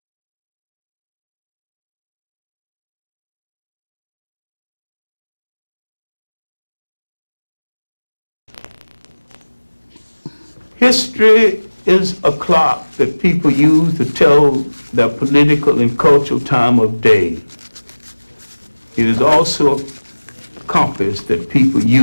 History is a clock that people use to tell their political and cultural time of day. It is also a compass that people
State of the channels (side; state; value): both; inverted; correlation -1.00